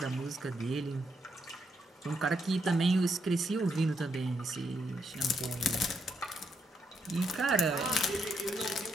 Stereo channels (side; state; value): both; normal; correlation 0.77